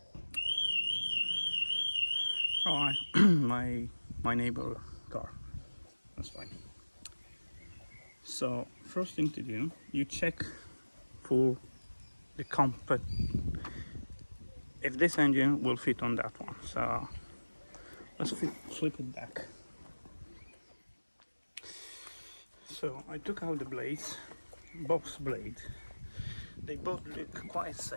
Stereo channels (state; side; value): inverted; both; correlation -1.00